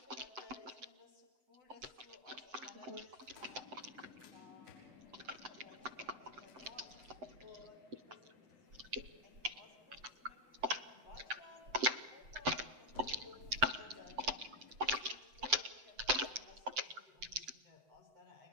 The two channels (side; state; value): left; late; 7.8 ms